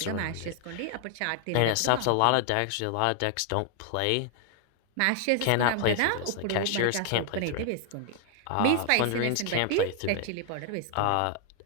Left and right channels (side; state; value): both; different; correlation 0.00